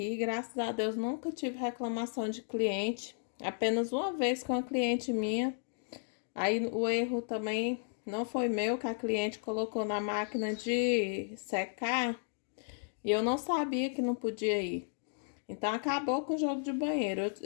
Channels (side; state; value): right; silent; digital silence